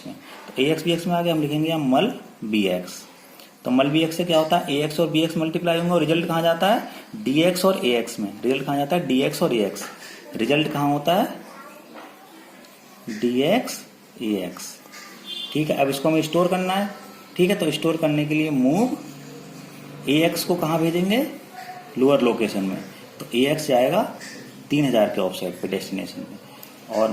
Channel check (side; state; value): both; identical; correlation 1.00